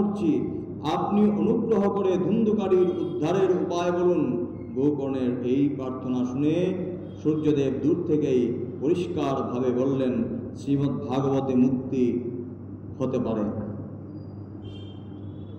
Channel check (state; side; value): identical; both; correlation 1.00